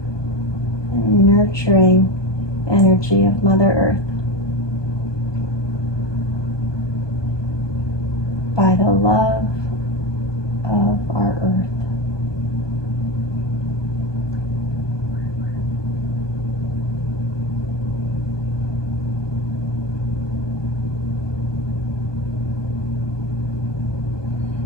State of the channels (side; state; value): right; late; 1.2 ms